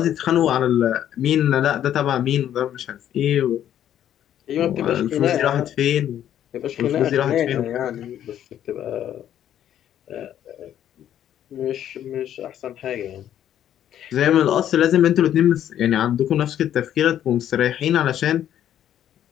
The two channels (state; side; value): quieter; right; 10.8 dB